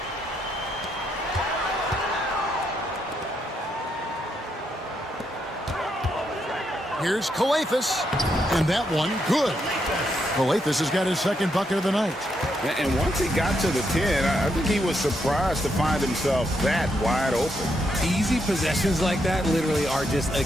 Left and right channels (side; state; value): both; normal; correlation 0.79